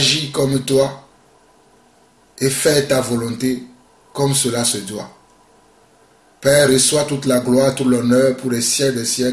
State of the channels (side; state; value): both; identical; correlation 1.00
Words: comme toi, et faire ta volonté comme cela se doit. Père, reçois toute la gloire, tout l'honneur pour les siècles des